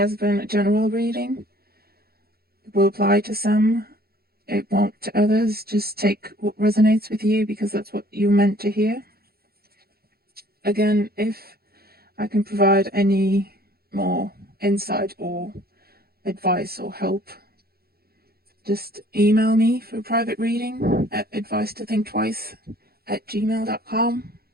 been a general reading. It will apply to some. It won't to others. Just take what resonates with you, because that's what you're meant to hear. Again, if I can provide any more insight or advice or help, just email me for a private reading at advice-to-think-twice@gmail.com.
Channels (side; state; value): left; late; 0.45 ms